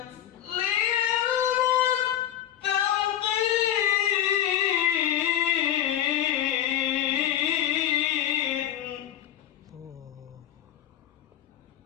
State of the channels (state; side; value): quieter; right; 11.3 dB